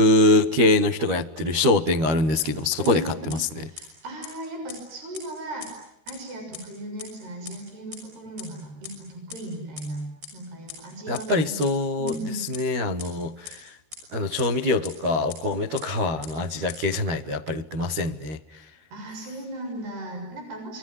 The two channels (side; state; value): left; late; 13 ms